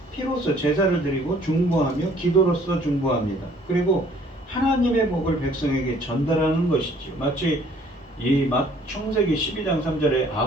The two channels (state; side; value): normal; both; correlation 0.58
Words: 피로써 제사를 드리고 중보하며 기도로서 중보합니다. 그리고 하나님의 복을 백성에게 전달하는 것이지요. 마치 이 창세기 12장 3절에